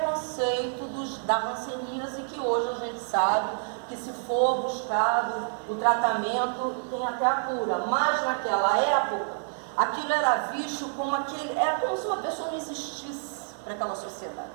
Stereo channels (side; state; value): left; silent; digital silence